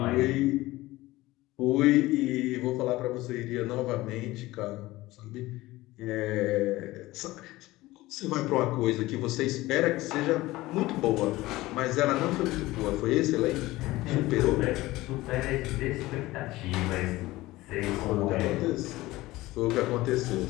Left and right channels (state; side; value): quieter; right; 18.5 dB